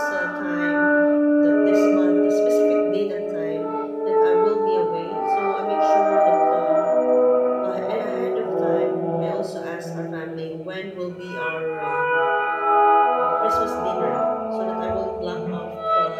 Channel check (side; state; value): both; identical; correlation 1.00